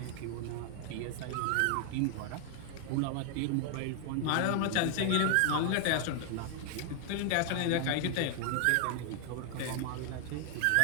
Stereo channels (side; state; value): both; different; correlation 0.00